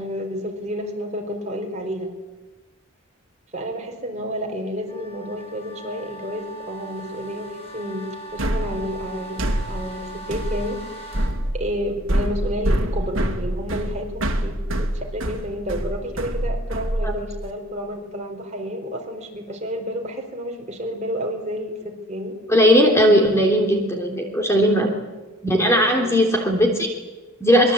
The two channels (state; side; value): normal; both; correlation 0.52